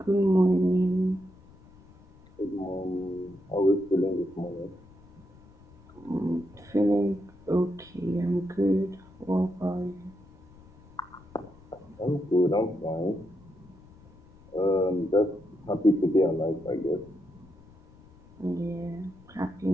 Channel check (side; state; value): left; noise; rumble, 24 dB below the sound